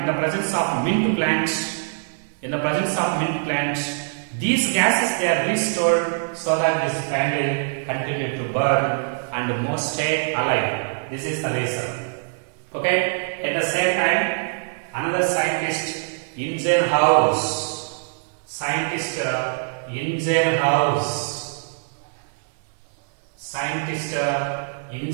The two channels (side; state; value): left; silent; 58 dB below the other